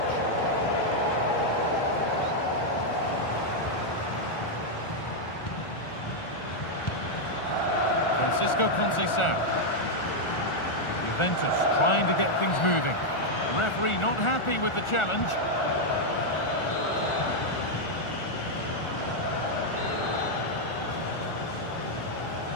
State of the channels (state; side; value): late; right; 1.4 ms